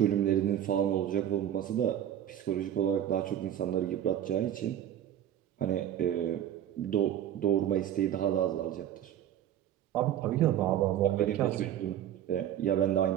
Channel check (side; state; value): left; quieter; 10.8 dB